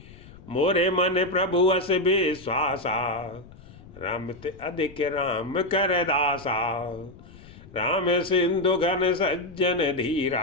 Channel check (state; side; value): noise; left; rumble, 20 dB below the sound